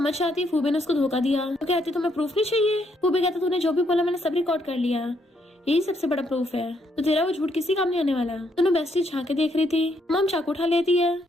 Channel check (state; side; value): normal; both; correlation 0.74